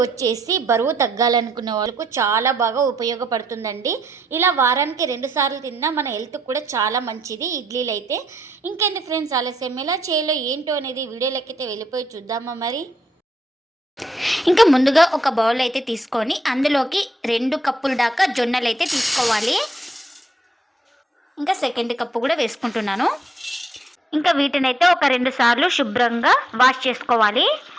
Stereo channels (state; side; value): normal; both; correlation 0.76